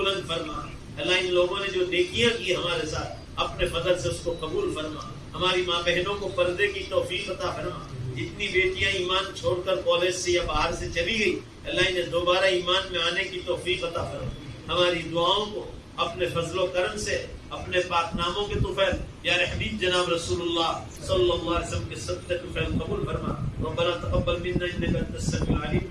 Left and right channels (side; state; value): both; identical; correlation 1.00